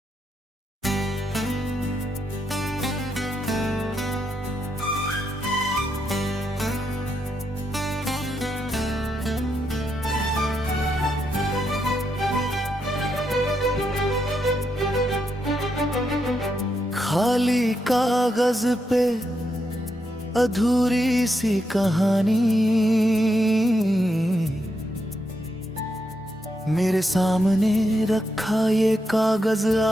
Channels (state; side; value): normal; both; correlation 0.82